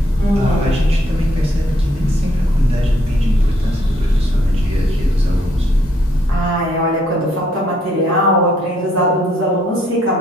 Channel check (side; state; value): both; normal; correlation 0.69